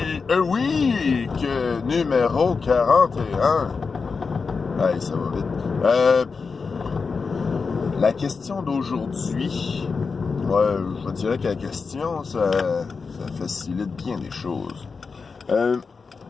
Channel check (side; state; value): right; quieter; 4.9 dB